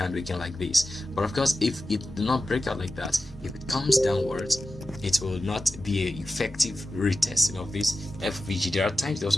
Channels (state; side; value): normal; both; correlation 0.93